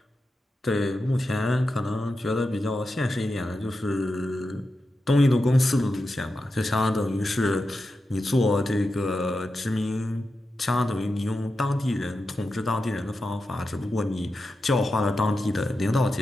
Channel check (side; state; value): both; normal; correlation 0.90